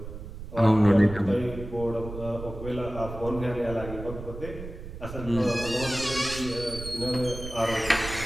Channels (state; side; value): noise; right; rumble, 11 dB below the sound